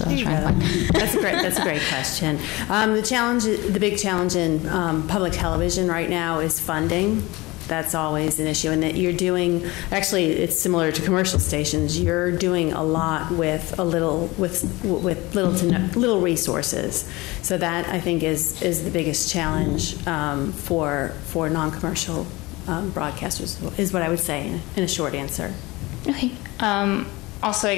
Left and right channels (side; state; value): right; quieter; 21.9 dB